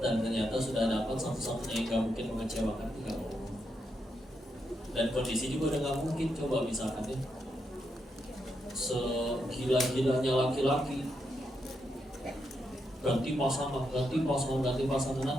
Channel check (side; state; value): both; normal; correlation 0.82